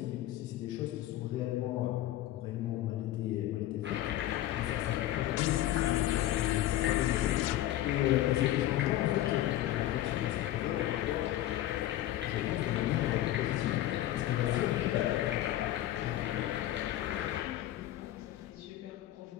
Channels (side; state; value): right; quieter; 14.1 dB